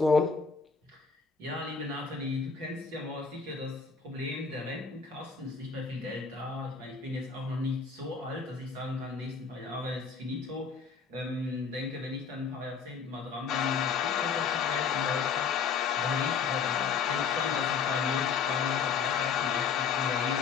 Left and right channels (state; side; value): quieter; right; 5.7 dB